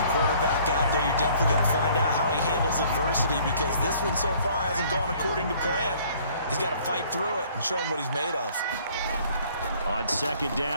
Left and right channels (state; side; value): inverted; both; correlation -0.57